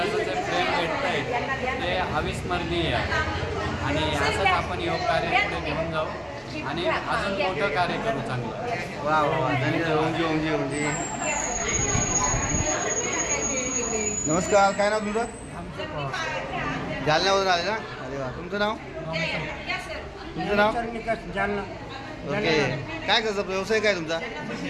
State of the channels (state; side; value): identical; both; correlation 1.00